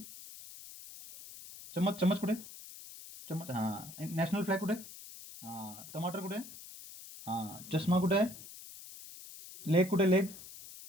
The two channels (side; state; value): left; noise; hiss, 15 dB below the sound